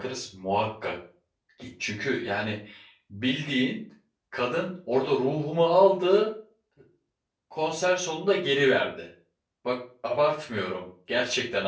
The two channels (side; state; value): both; identical; correlation 1.00